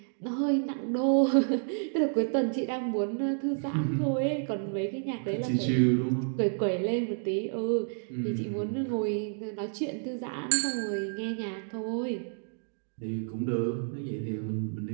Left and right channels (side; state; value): left; silent; digital silence